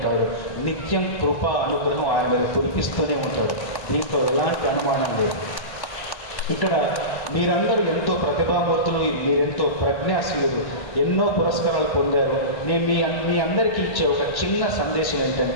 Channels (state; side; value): late; right; 1.1 ms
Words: నిత్యం కృప, అనుగ్రహం ఆయన మీద కురిపిస్తూనే ఉంటాడు. దీంట్లో ఎలాంటి అనుమానం లేదు. ఇక్కడ మీరందరూ ఎంతో ప్రతిభామూర్తులు, మీరెంతో ప్రజ్ఞాశీలులు, ఎన్నో పురస్కారాలు పొందారు. నేను మీ అందరికీ ఇచ్చే ఒక చిన్న సందేశం